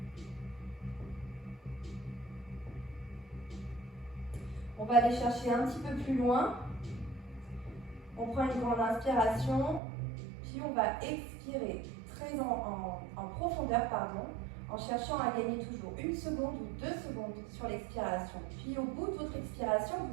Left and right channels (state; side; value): drops out; left; at 9.8 s